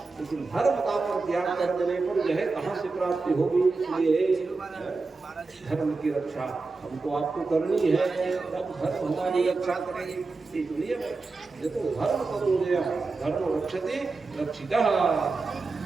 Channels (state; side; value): quieter; left; 3.9 dB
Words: लेकिन धर्म का परित्याग कर देने पर यह कहाँ से प्राप्ति होगी? इसलिए धर्म की रक्षा हमको आपको करनी है, तब धर्म हमारी रक्षा करेगी। इसलिए ये तो धर्म करो धर्म रक्षते रक्षिता